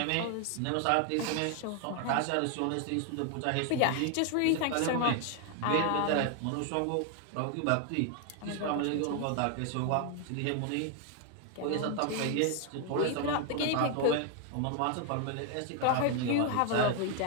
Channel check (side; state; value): both; different; correlation 0.00